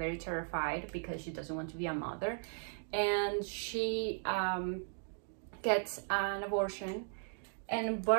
terrified because she doesn't want to be a mother, and she gets an abortion. And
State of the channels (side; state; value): left; silent; 53 dB below the other